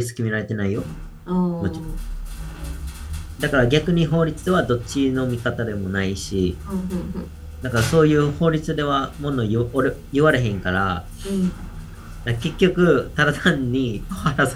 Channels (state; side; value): identical; both; correlation 1.00